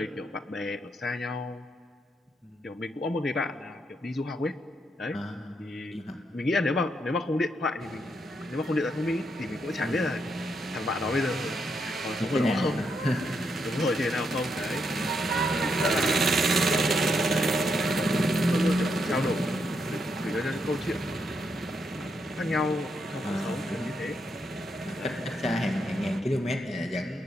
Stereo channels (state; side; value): normal; both; correlation 0.79